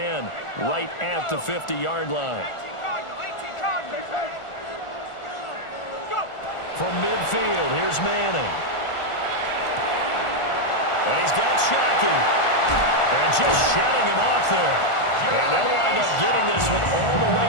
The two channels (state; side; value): late; right; 1.4 ms